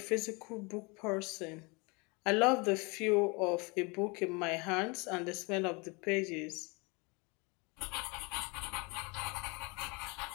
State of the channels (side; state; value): right; quieter; 28.8 dB